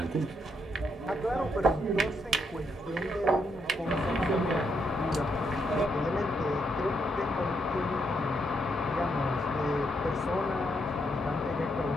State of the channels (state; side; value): normal; both; correlation 0.78